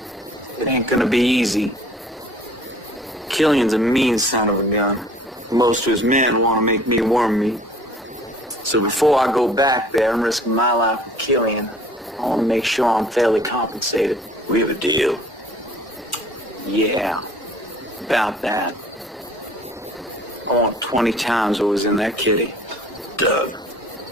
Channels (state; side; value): normal; both; correlation 0.52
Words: It ain't gonna be easy. Killian's a mean son of a gun. Most of his men want to make me worm meat. So before I go back there and risk my life with Killian, I want to make sure I'm fairly compensated. We have a deal. Yeah, about that. I want 20 times what was in that kitty. Doug.